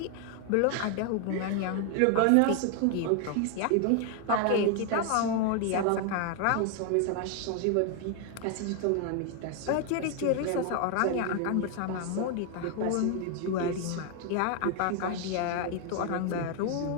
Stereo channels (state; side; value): different; both; correlation 0.00